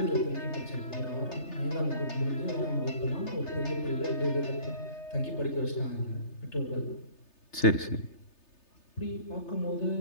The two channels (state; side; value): late; right; 3.3 ms